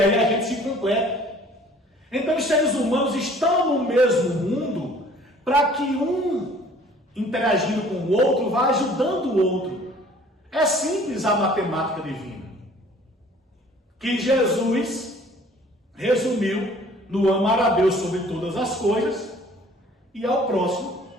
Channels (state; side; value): normal; both; correlation 0.53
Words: a gente se completa. Então os seres humanos estão no mesmo mundo para que um, interagindo com o outro, vá ajudando o outro. É simples a matemática divina, que Jesus resumiu no amar a Deus sobre todas as coisas e ao próximo